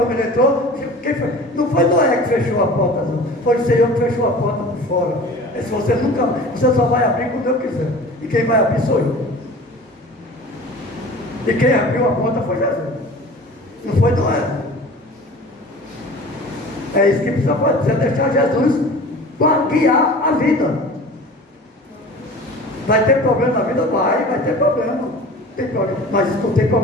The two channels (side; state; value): both; normal; correlation 0.41